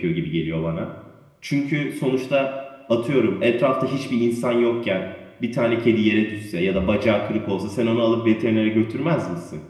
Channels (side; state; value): both; identical; correlation 1.00